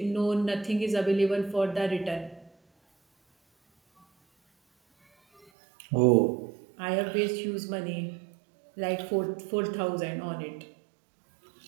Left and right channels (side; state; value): left; drops out; at 5.5 s